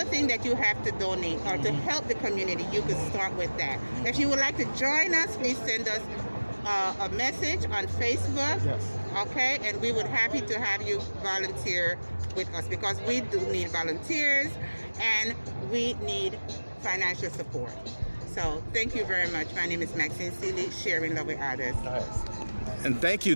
thing that you have to donate or to help the community, you could start with that. If you would like to join us, please send us a message on Facebook. Yes. Okay, and we would happy to have you volunteer with us, because we do need volunteers and we need financial support. So thank you very much. My name is Maxine, Sharing Love with Others. Nice. And thank you.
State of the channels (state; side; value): inverted; both; correlation -1.00